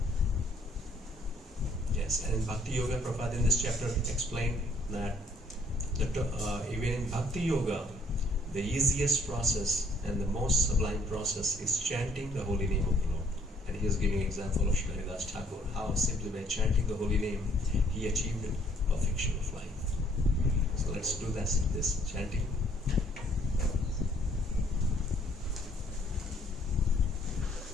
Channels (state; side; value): normal; both; correlation 0.64